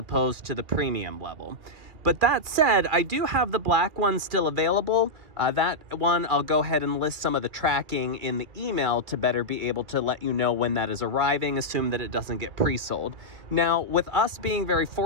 to the premium level. But that said, I do have the black one still available. That one, I'll go ahead and list some of the tracking in the email to better be able to let you know when that is arriving, assume that it doesn't get pre-sold. Now, with us being very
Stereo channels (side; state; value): left; late; 2.1 ms